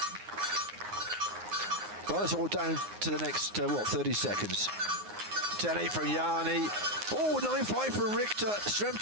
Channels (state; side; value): late; left; 9.6 ms